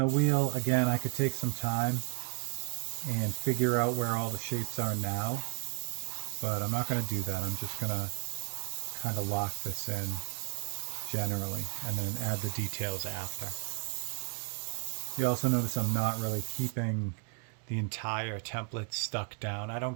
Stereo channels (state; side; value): quieter; left; 35.7 dB